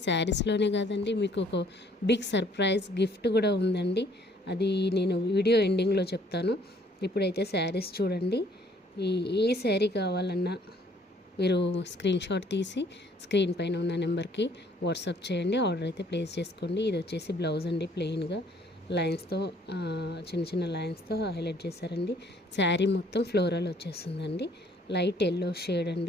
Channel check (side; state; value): both; normal; correlation 0.62